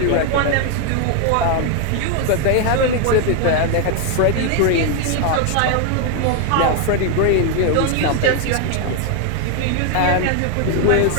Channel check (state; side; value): different; both; correlation 0.01